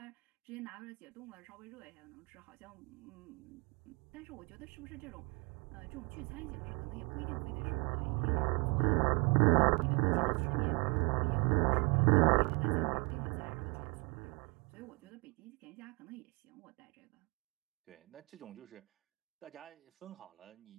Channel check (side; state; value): left; quieter; 31.2 dB